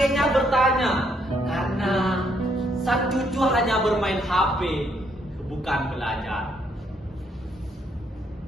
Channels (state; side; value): normal; both; correlation 0.72